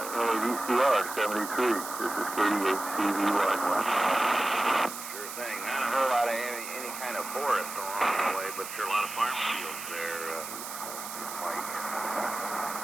NADCR 73. This is KDHCVY. Sure thing. Not a whole lot of any kind of forest along the way, but sure a lot of farm fields there, Mike.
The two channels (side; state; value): right; noise; hiss, 9 dB below the sound